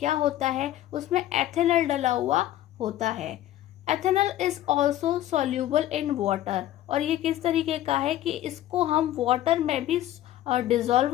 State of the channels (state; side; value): quieter; right; 13.5 dB